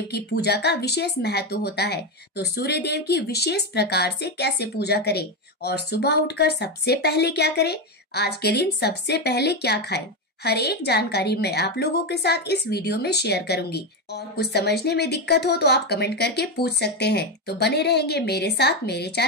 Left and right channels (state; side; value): normal; both; correlation 0.11